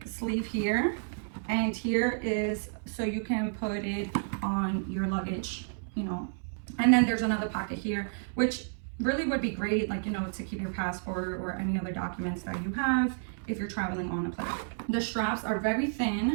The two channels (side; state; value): left; silent; 57 dB below the other